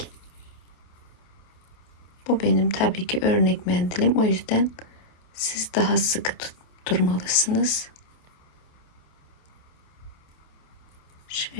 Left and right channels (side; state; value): right; late; 28 ms